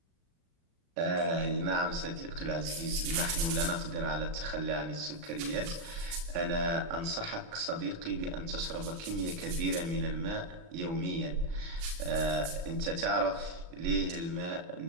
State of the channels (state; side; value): late; left; 34 ms